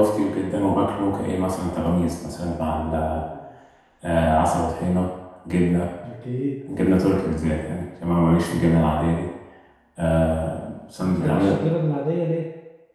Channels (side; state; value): both; identical; correlation 1.00